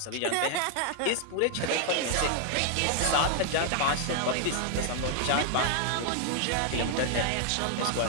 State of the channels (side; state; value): both; different; correlation 0.00